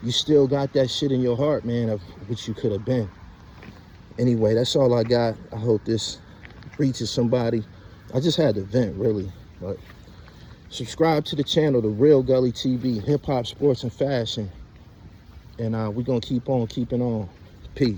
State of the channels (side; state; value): both; identical; correlation 1.00